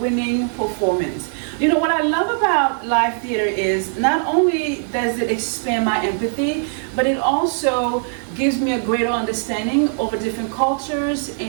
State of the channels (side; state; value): left; silent; 64 dB below the other